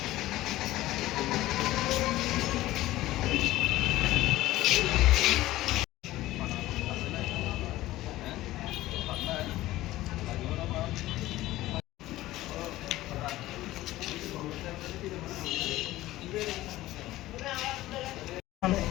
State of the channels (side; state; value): right; quieter; 16.4 dB